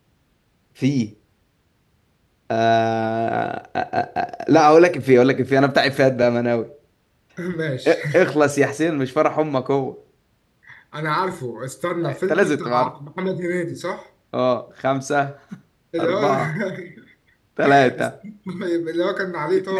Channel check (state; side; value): identical; both; correlation 1.00